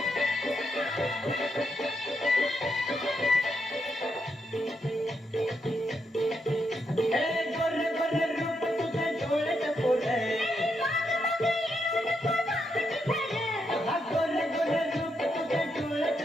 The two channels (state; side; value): normal; both; correlation 0.81